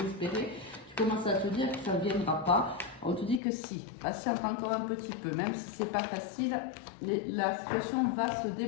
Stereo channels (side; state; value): right; drops out; at 3.4 s